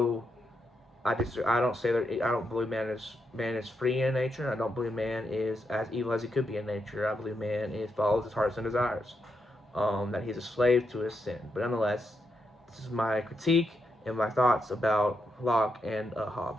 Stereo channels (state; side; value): normal; both; correlation 0.83